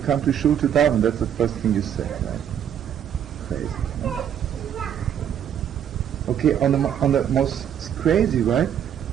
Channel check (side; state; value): left; quieter; 9.4 dB